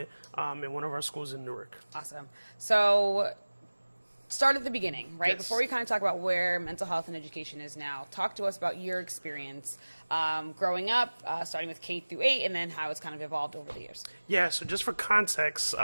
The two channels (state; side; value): inverted; both; correlation -1.00